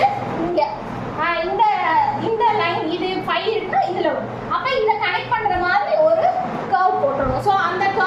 இங்கே இந்த லைன் இது 5 இருக்குன்னா இதில் வரும். அப்போ இதை கனெக்ட் பண்ணுற மாதிரி ஒரு கர்வ் போட்டுருணும். ஸோ அந்த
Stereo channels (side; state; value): both; identical; correlation 1.00